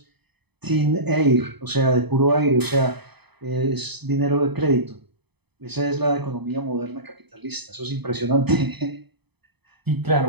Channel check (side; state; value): left; late; 0.98 ms